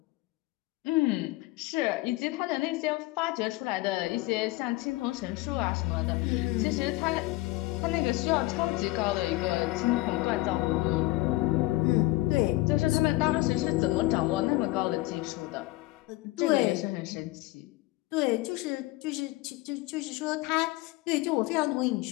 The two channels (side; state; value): right; quieter; 19.8 dB